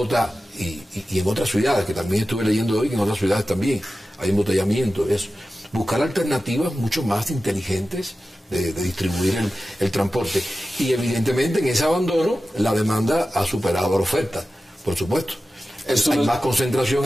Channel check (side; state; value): both; normal; correlation 0.94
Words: y en otras ciudades, que también estuve leyendo hoy que en otras ciudades también hay embotellamiento, eso. Buscar alternativas mucho más inteligentes de distribuir el transporte. Y evidentemente en ese abandono la demanda ha superado la oferta, por supuesto. Hay más concentración